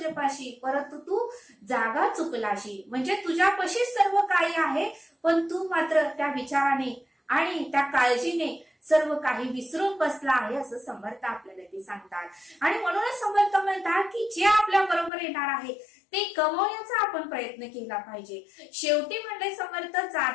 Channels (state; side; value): drops out; right; at 15.1 s